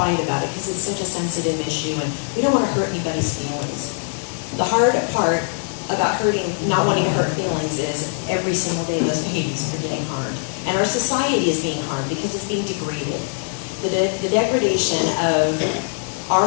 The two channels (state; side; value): silent; right; digital silence